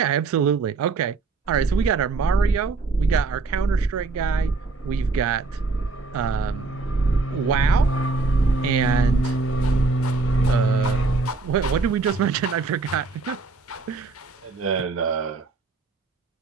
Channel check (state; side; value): quieter; left; 3.9 dB